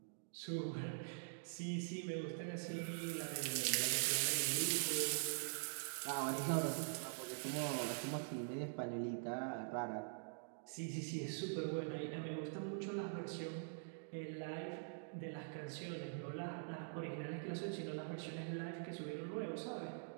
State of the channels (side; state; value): left; silent; digital silence